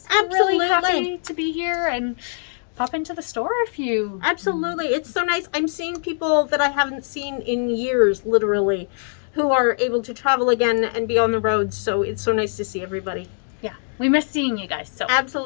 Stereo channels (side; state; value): right; silent; digital silence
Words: Absolutely. Really happy to be here and pop into the store if you... Absolutely. It's so nice. I'm seeing people that I haven't seen in years, literally, who are able to travel again and be on the road. So it's so nice to see everybody. Yeah, we miss seeing you guys. So